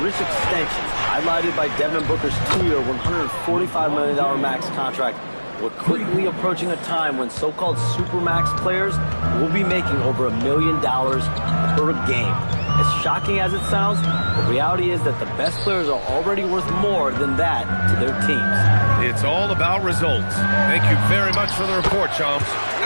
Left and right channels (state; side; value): inverted; both; correlation -1.00